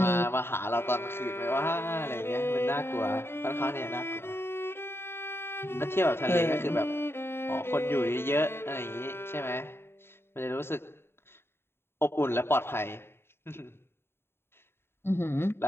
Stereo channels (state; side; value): late; right; 0.11 ms